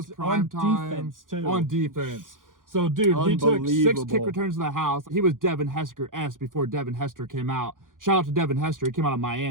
prime time defense too. On defense. So, dude, he took 6 kick returns to the house. He was Devin Hester-esque before Devin Hester came out. Shout out to Devin Hester. He came out of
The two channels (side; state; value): left; late; 0.89 ms